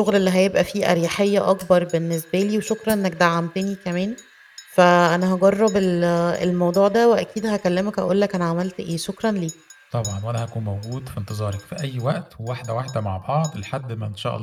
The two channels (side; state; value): both; identical; correlation 1.00